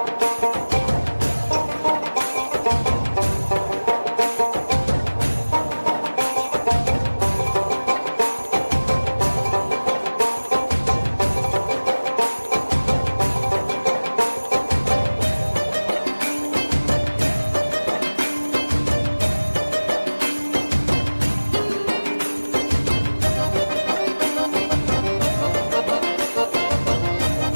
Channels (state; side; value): inverted; both; correlation -1.00